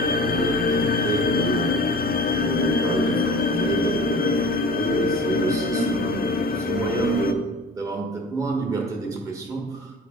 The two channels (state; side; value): normal; both; correlation 0.41